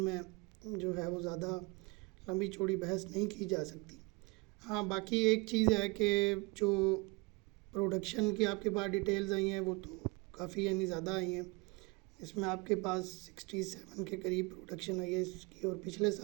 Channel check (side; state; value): left; quieter; 27.4 dB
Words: जो है वो ज़्यादा लंबी चौड़ी बहस नहीं की जा सकती। हाँ, बाकी एक चीज़ है कि जो प्रोडक्शन की आपके पास डिटेल्स आई हैं वो तो काफ़ी यानी ज़्यादा आई हैं। इसमें आपके पास 67 के करीब प्रोडक्शन आई है इसकी, और पिछले